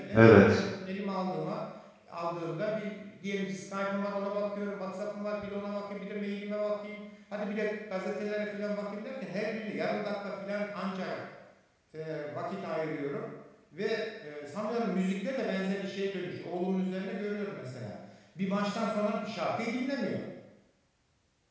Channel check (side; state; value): both; identical; correlation 1.00